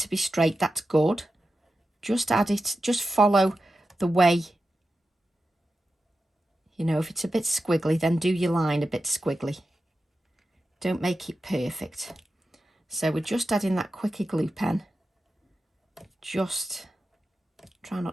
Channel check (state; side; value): normal; both; correlation 0.91